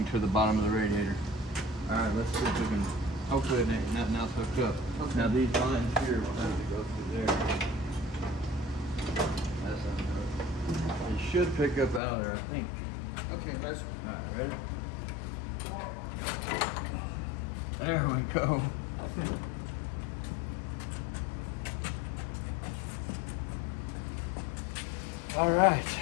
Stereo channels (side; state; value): right; drops out; at 12.0 s